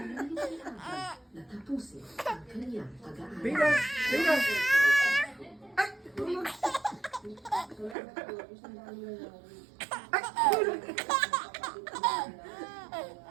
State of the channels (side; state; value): left; drops out; at 8.0 s